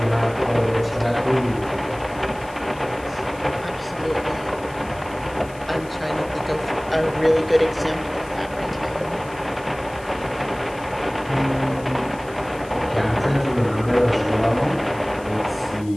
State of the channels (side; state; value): left; noise; hiss, 22 dB below the sound